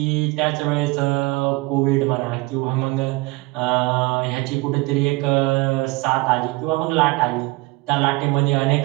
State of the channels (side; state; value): left; quieter; 23.1 dB